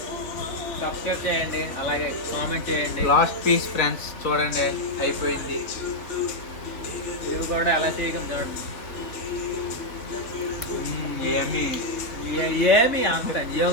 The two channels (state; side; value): late; right; 3.4 ms